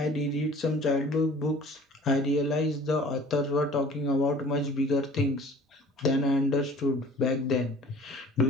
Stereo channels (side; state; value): both; normal; correlation 0.48